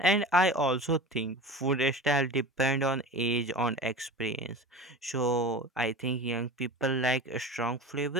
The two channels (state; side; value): normal; both; correlation 0.33